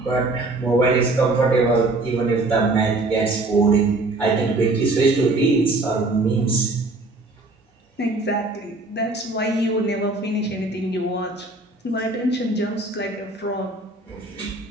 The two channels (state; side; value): quieter; left; 3.0 dB